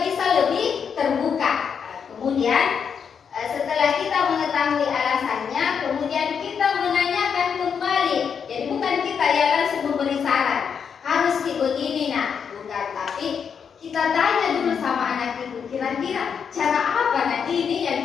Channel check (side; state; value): right; quieter; 6.9 dB